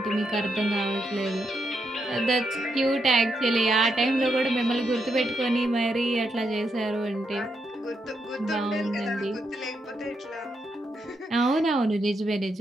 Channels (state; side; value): normal; both; correlation 0.81